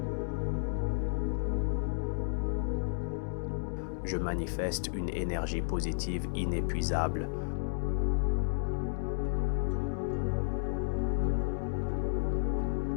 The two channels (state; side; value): silent; right; digital silence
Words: Je manifeste une énergie positive inépuisable.